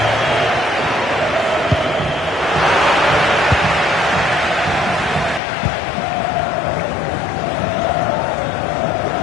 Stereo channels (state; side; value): drops out; right; at 5.4 s